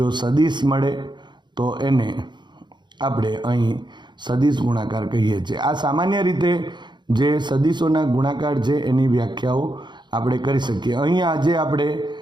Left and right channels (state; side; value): late; left; 0.22 ms